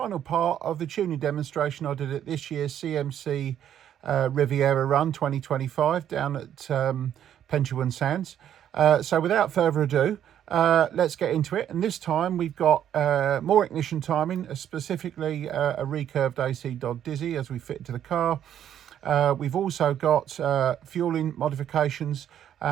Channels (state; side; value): quieter; left; 10.2 dB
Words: part of the tuning demonstration I did at this year's CMC Riviera run 2025 down at Pentuan Sands. So without further ado, let's get into it. And this time we've got more ignition timing, specifically a recurved ACDodd Dizzy as we fit to the car. We've also got fueling modifications,